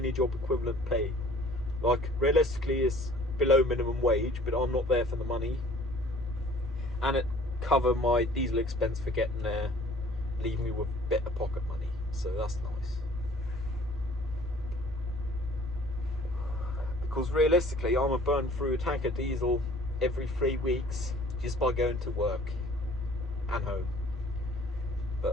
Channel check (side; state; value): both; normal; correlation 0.52